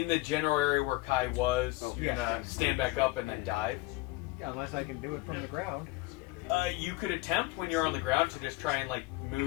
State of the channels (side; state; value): right; quieter; 20.7 dB